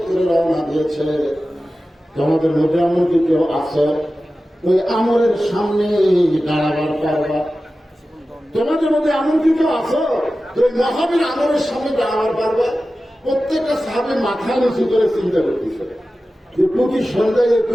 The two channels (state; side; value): normal; both; correlation 0.94